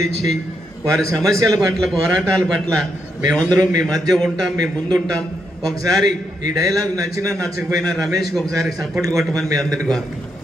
ఇచ్చి, వారి సమస్యల పట్ల, పోరాటాల పట్ల మేమందరం మీ మధ్య ఉంటాం, మేము ముందుంటాం. ఒకసారి ఈ డైలాగ్ నచ్చినా నచ్చకపోయినా రమేష్కి ఒకసారి చప్పట్లు కొట్టమని మీ అందరికీ కోరుతాం.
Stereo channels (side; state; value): both; normal; correlation 0.80